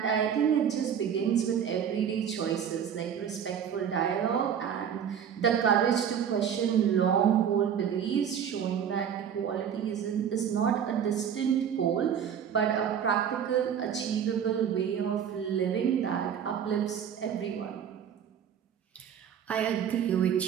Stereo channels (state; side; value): quieter; left; 8.4 dB